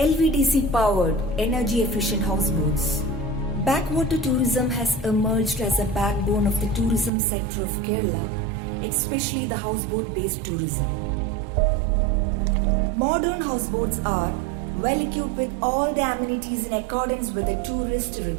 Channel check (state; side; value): drops out; left; at 7.1 s